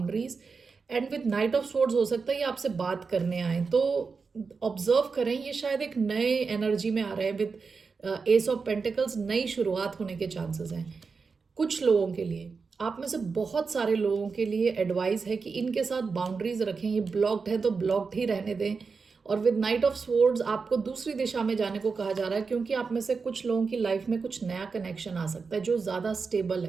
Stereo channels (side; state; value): left; quieter; 4.9 dB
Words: And with night of swords हो सकता है ये आपसे बात करने आए, तो ऑब्जर्व करें, ये शायद एक नए एनर्जी में आ रहे हैं। विद एस ऑफ पेंटिकल्स, नई शुरुआत होने के चांसेस हैं कुछ लोगों के लिए। आप में से बहुत सारे लोगों के लिए एडवाइस है कि इनके साथ बाउंड्रीज रखें। ये ब्लॉक्ड है तो ब्लॉक्ड ही रहने दें। और विद नाइट ऑफ स्वॉर्ड्स आपको दूसरी दिशा में जाने को कहा जा रहा है, क्योंकि आप में से कुछ लोगों की लाइफ में कुछ नया कनेक्शन आ सकता है जो ज़्यादा स्टेबल